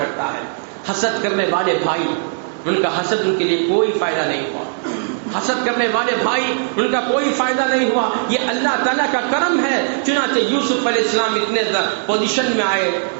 ہے. حسد کرنے والے بھائی، ان کا حسد ان کے لیے کوئی فائدہ نہیں ہوا. حسد کرنے والے بھائی، ان کا کوئی فائدہ نہیں ہوا. یہ اللہ تعالیٰ کا کرم ہے. چنانچہ یوسف علیہ السلام اتنے پوزیشن میں آئے،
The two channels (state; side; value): silent; left; digital silence